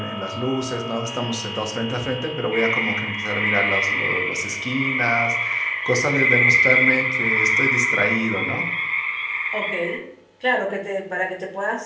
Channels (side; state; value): both; identical; correlation 1.00